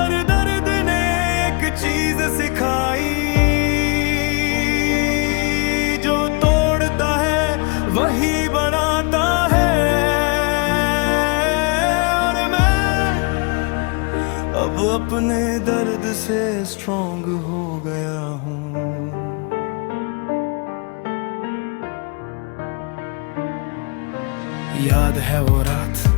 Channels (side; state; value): right; quieter; 32.8 dB